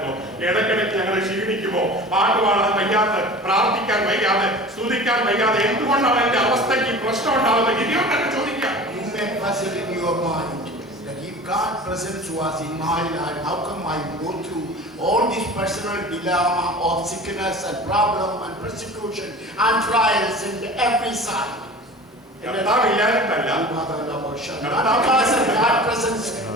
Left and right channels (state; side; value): normal; both; correlation 0.38